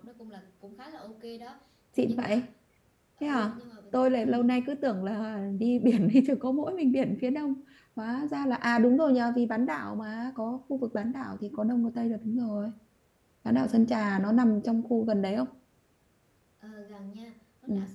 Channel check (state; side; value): identical; both; correlation 1.00